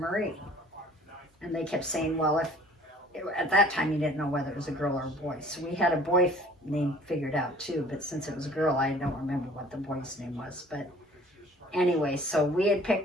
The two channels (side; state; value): both; normal; correlation 0.51